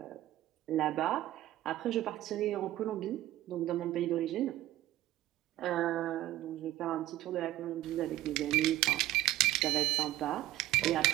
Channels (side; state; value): left; quieter; 14.9 dB